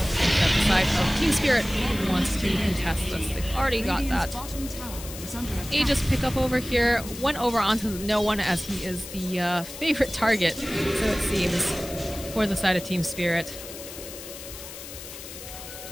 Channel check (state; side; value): noise; left; hiss, 12 dB below the sound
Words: think that the side of Team Spirit wants to contest this. They've already got that Aegis pickup over here. Went over onto no one as he is the favorite target, so it seems, for the side of Team Spirit.